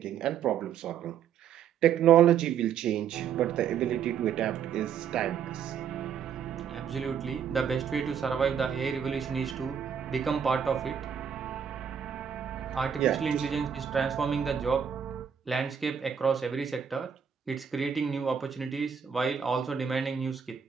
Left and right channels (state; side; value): quieter; left; 7.8 dB